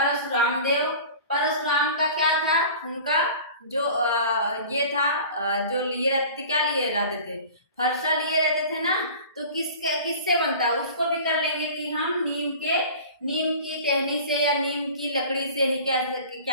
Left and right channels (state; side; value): inverted; both; correlation -0.40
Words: देव। परशुराम का क्या था, उनका जो ये था, जो लिए रहते थे, क्या लिए रहते थे, फरसा लिए रहते थे ना। तो किससे बनता है, उसको भी कर लेंगे कि हम नीम की टहनी से या नीम की लकड़ी से ही